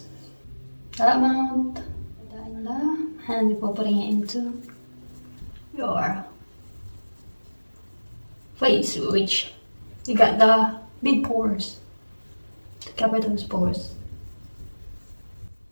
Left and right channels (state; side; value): inverted; both; correlation -1.00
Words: That amount, put that in there, and before putting it into your face, which you got the big pores to cover those pores.